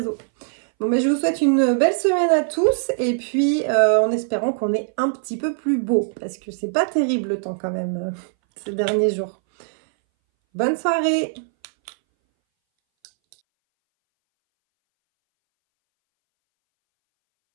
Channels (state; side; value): silent; left; 62 dB below the other